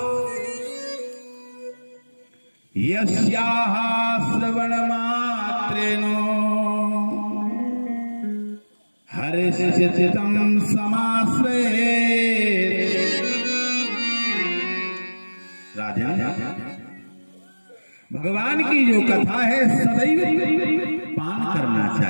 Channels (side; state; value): both; inverted; correlation -1.00